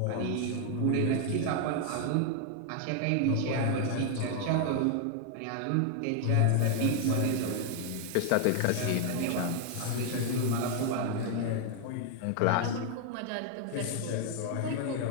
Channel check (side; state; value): both; different; correlation 0.00